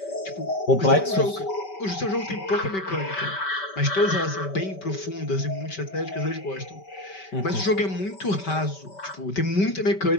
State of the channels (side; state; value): right; late; 5.2 ms